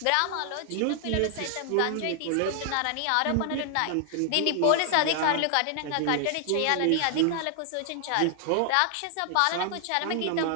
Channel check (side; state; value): both; different; correlation 0.00